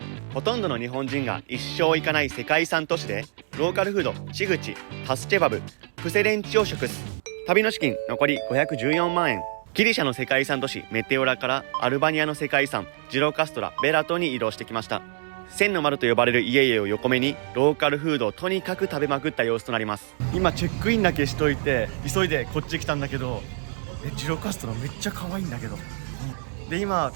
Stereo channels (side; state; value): left; silent; 62 dB below the other